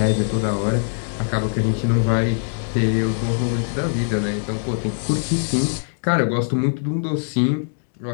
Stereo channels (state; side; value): silent; right; digital silence